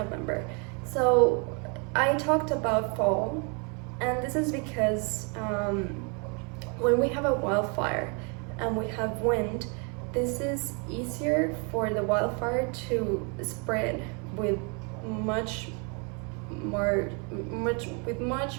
So I talked about fall, and this is because when we have a wildfire and we have wind, this is easier for the wildfire to spread with much more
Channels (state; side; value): quieter; left; 35.5 dB